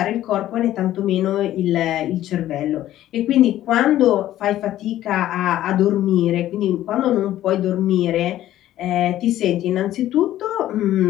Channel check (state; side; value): quieter; right; 13.4 dB